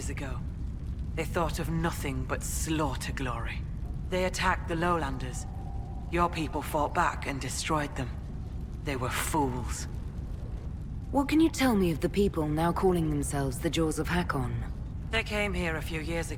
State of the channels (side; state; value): both; identical; correlation 1.00